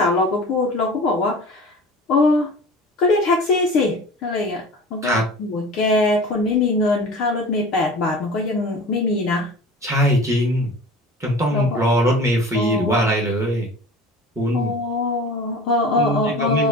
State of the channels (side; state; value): both; normal; correlation 0.39